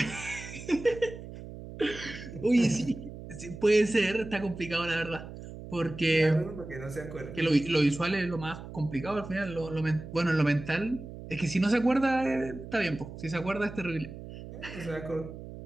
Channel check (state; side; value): noise; right; hum, 12 dB below the sound